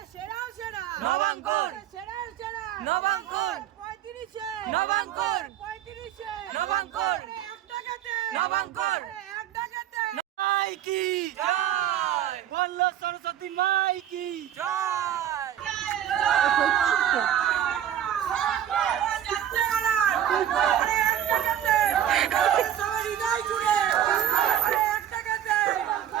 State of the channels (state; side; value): quieter; left; 10.6 dB